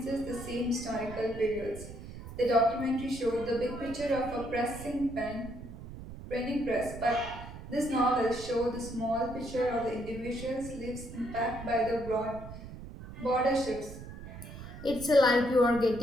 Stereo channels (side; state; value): right; noise; rumble, 12 dB below the sound